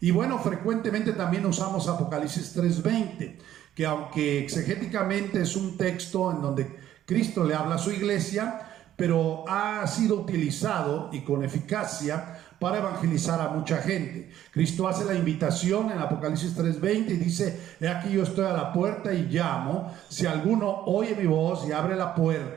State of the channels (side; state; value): left; quieter; 11.9 dB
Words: bueno, frecuentemente también usamos Apocalipsis 3:20, que aunque exegéticamente es un texto en donde Cristo le habla a su iglesia, pero ha sido utilizado y con eficacia para evangelizar a mucha gente. Cristo hace la invitación en Apocalipsis 3:20 y dice: he aquí yo estoy a la puerta y llamo. Si alguno oye mi voz y abre la